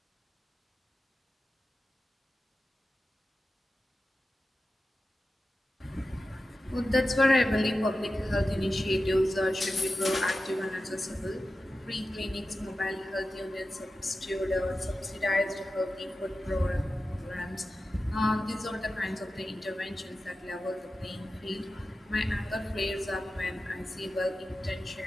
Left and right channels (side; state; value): both; normal; correlation 0.93